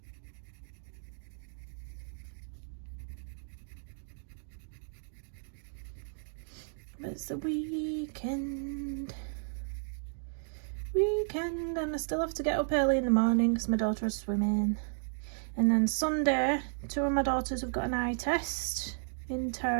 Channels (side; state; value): left; silent; digital silence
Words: But it's the weekend, and I still have to get up early in the morning because my daughter is swimming. And then Sunday, 2 of my daughters have got an eye test in